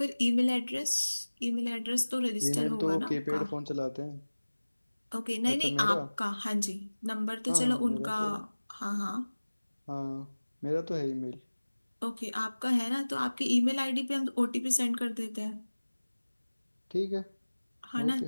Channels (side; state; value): both; inverted; correlation -1.00